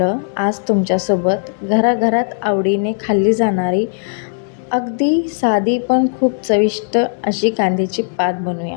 आज तुमच्यासोबत घराघरात आवडीने खाल्ली जाणारी अगदी साधी पण खूप चविष्ट अशी कांद्याची पात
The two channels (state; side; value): silent; right; digital silence